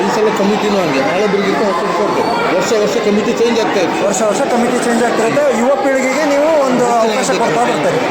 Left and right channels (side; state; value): both; identical; correlation 1.00